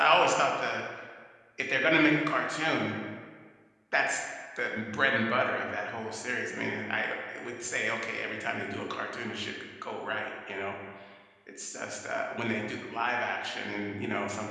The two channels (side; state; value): both; identical; correlation 1.00